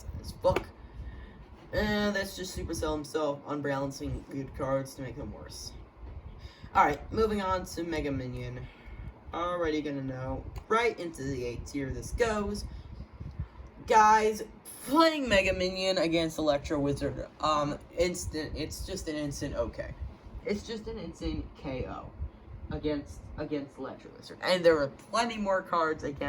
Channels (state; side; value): identical; both; correlation 1.00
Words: as fuck. That's just Supercell himself unbalancing good cards to make them worse. Alright, moving on to Mega Minion. Already gonna know right into the A tier this goes. Guys, playing Mega Minion against Electro Wizard, it's just an instant okay. It's just an instant KO against Electro Wizard. And there are plenty more cards